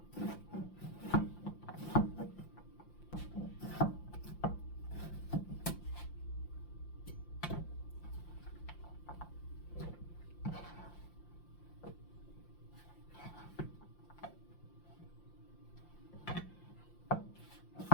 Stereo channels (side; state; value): right; late; 5.8 ms